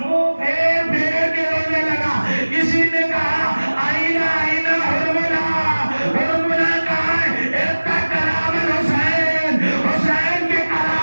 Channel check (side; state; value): both; inverted; correlation -1.00